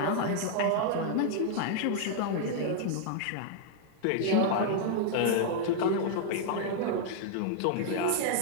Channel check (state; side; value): different; both; correlation -0.01